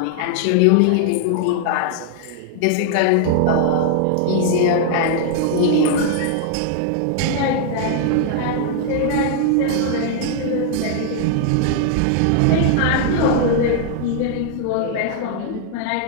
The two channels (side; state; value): both; different; correlation 0.00